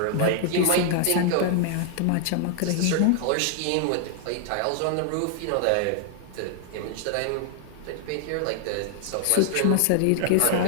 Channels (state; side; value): different; both; correlation 0.00